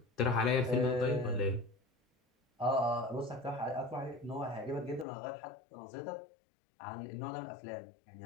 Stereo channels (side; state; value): right; drops out; at 5.1 s